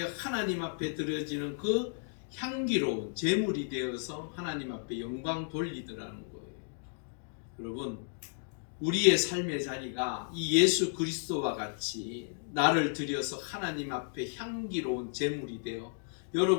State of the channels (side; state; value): right; silent; digital silence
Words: 하나님 앞에 드려지는 그 향기로운 제물이 되어서 하나님 앞에 영광 돌리더라는 거예요. 여러분, 우리의 삶의 자리가 이 예수 그리스도와 같이 나를 들여서 하나님 앞에 향기로운 제물이 되어